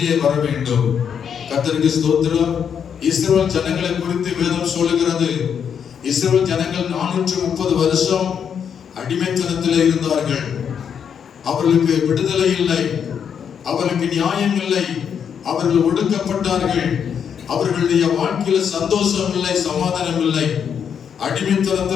வர வேண்டும். கர்த்தருக்கு ஸ்தோத்திரம். இஸ்ரவேல் ஜனங்களை குறித்து வேதம் சொல்லுகிறது. இஸ்ரவேல் ஜனங்கள் 430 வருஷம் அடிமைத்தனத்தில் இருந்தார்கள். அவர்களுக்கு விடுதலை இல்லை, அவர்களுக்கு நியாயம் இல்லை, அவர்கள் ஒடுக்கப்பட்டார்கள். அவர்களுடைய வாழ்க்கையில சந்தோஷம் இல்லை, சமாதானம் இல்லை.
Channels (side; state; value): right; quieter; 7.7 dB